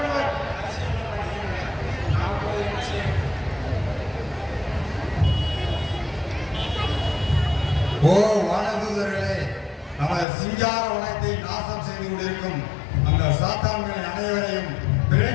ஓ வானதூதர்களே, நமது சிங்கார வனத்தை நாசம் செய்து செய்து கொண்டிருக்கும் அந்த சாத்தான்கள் அனைவரையும்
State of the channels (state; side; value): drops out; right; at 10.2 s